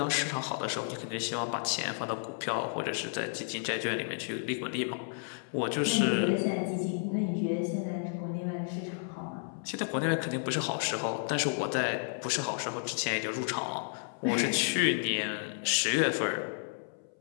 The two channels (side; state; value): right; silent; 56 dB below the other